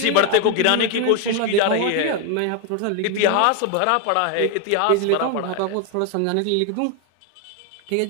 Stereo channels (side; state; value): both; different; correlation 0.01